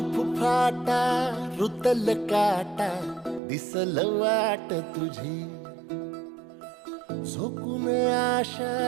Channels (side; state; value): left; drops out; at 3.4 s